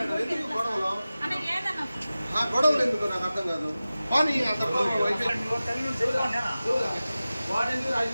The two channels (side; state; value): both; inverted; correlation -0.96